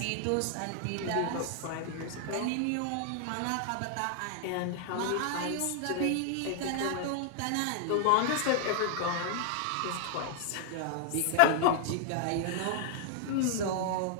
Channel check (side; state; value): both; different; correlation 0.00